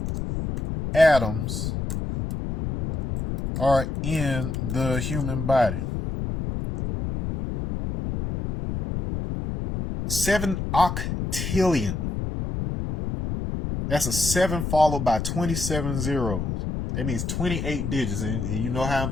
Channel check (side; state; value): left; noise; rumble, 3 dB below the sound